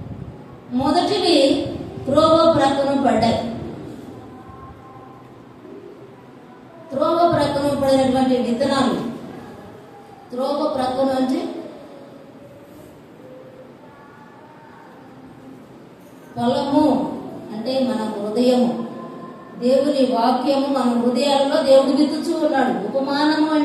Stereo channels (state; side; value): identical; both; correlation 1.00